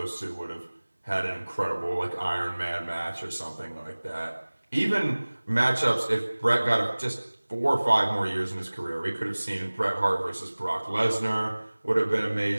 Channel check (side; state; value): both; inverted; correlation -1.00